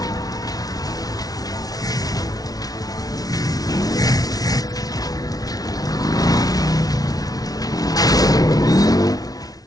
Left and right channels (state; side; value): late; right; 0.18 ms